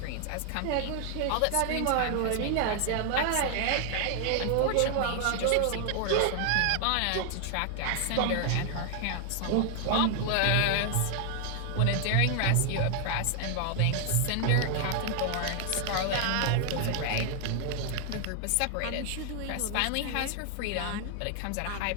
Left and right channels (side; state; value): both; different; correlation 0.00